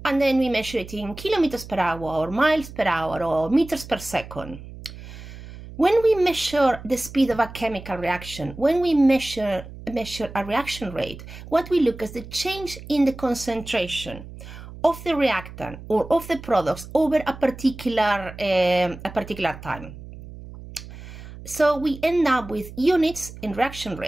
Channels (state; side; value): noise; right; hum, 14 dB below the sound